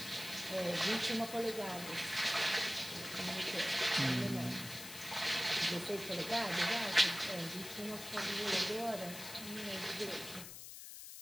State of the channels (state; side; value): noise; left; hiss, 11 dB below the sound